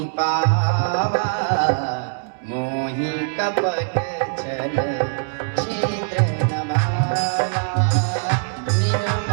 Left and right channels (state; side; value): silent; left; 64 dB below the other